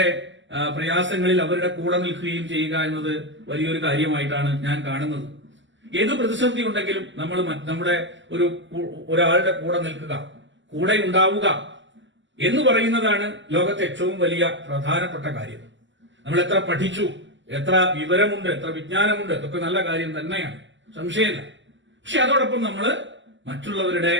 പ്രയാസങ്ങളിൽ അവരുടെ കൂടെ നിൽക്കുകയും ചെയ്യുക എന്നത് വലിയൊരു കാര്യമായിട്ടാണ് ഞാൻ കാണുന്നത്. ഏത് പ്രതിസന്ധി ഉണ്ടെങ്കിലും നമ്മൾ നമ്മുടെ ഒരാളുടെ കൂടെ നിൽക്കുക, കൂടെ ഉണ്ടാവുക എന്ന് പറയുന്നതാണ് ലോകത്തെ ഏറ്റവും വലിയ പ്രധാനപ്പെട്ട കാര്യം. നമ്മൾ എത്ര പഠിച്ചു, എത്ര വിവരമുണ്ട്, എത്ര വിജ്ഞാനമുണ്ട്, അതൊക്കെ നല്ല കാര്യം തന്നെയാണ്, സംശയമില്ല. പക്ഷെ അതോടൊപ്പം നമ്മൾ മറ്റുള്ളവരുടെ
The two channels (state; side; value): late; left; 0.54 ms